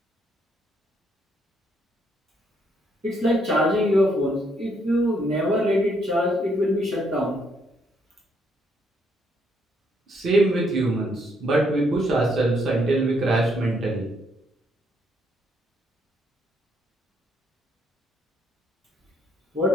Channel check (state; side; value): normal; both; correlation 0.72